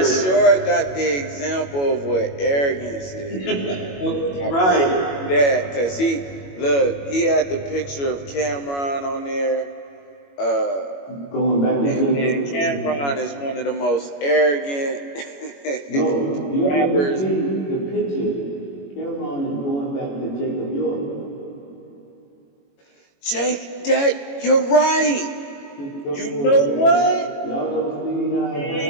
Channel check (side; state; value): right; late; 21 ms